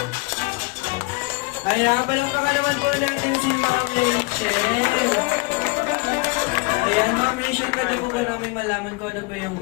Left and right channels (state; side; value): quieter; right; 25.7 dB